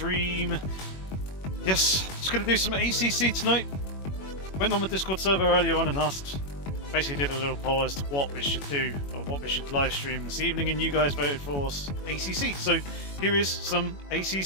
Yes, just going to do some ACC tonight. Went on the Discord server earlier on and asked, basically did a little poll as to what we should do, or what we should live stream this evening, and you guys voted for ACC. So here is some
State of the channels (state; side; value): late; right; 21 ms